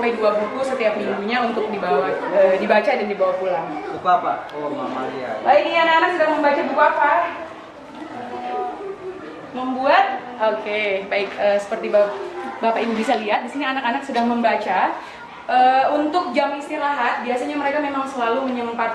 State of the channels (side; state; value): both; identical; correlation 1.00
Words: 2 buku setiap minggunya untuk dibaca dan dibawa pulang. Buku apa? Oh, Mama Lia. Ini anak-anak sedang membaca buku apa? Membuat? Oke, baik. Seperti Bapak Ibu bisa lihat, di sini anak-anak sedang membaca. Untuk jam istirahat, biasanya mereka memang selalu